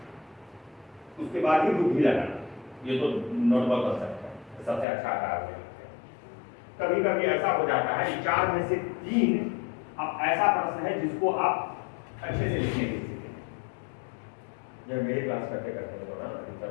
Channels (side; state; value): right; drops out; at 4.9 s